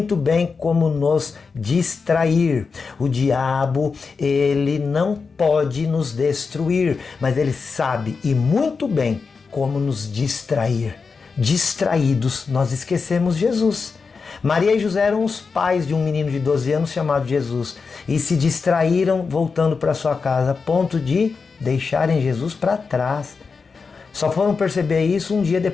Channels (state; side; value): quieter; right; 4.9 dB